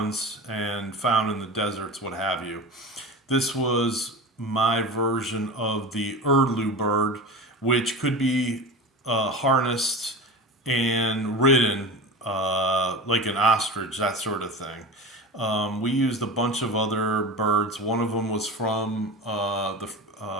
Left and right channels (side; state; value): both; normal; correlation 0.30